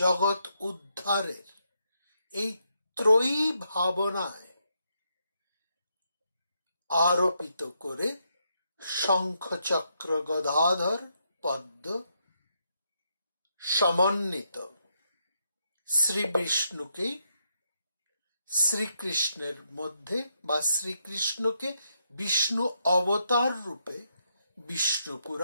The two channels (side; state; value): both; inverted; correlation -0.79